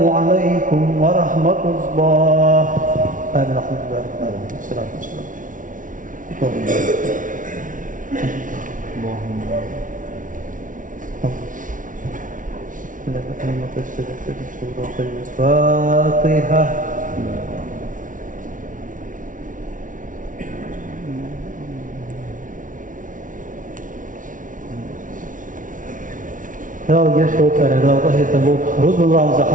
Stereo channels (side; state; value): left; late; 0.38 ms